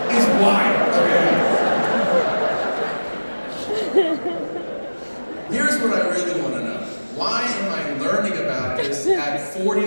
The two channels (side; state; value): both; inverted; correlation -1.00